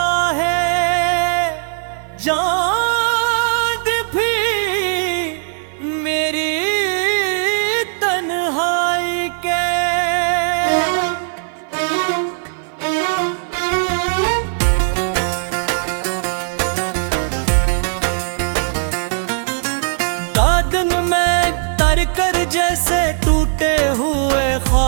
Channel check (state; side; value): silent; left; 56 dB below the other